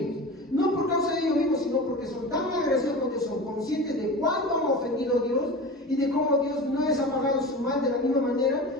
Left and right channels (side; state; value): both; normal; correlation 0.31